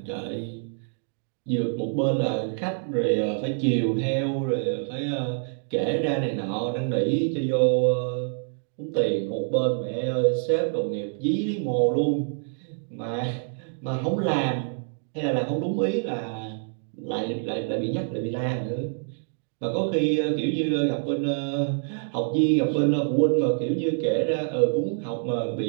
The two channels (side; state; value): left; silent; 61 dB below the other